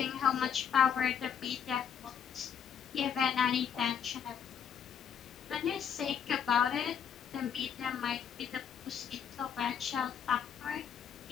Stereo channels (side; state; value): right; quieter; 7.9 dB